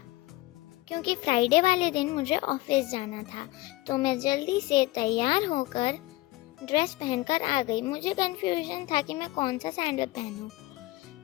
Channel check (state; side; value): quieter; right; 19.6 dB